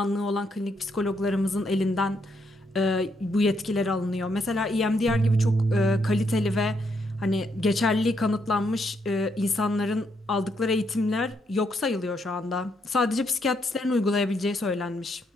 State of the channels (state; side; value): normal; both; correlation 0.76